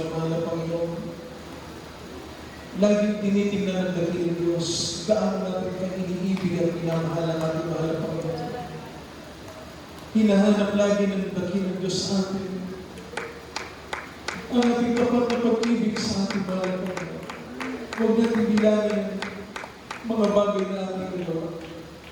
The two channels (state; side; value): identical; both; correlation 1.00